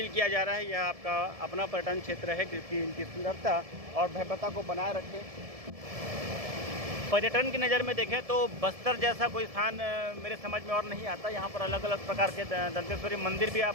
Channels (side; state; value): left; late; 1.7 ms